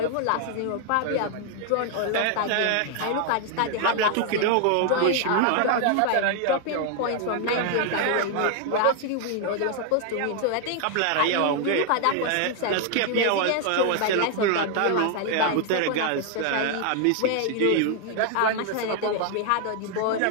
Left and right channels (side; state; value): both; different; correlation 0.00